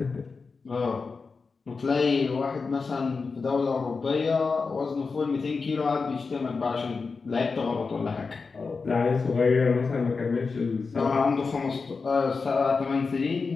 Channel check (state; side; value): quieter; right; 4.6 dB